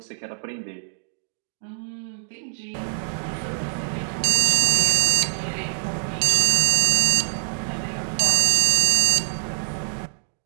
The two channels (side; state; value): left; silent; digital silence